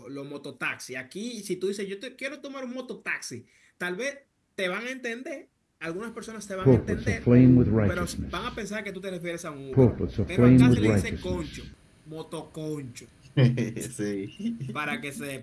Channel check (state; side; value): identical; both; correlation 1.00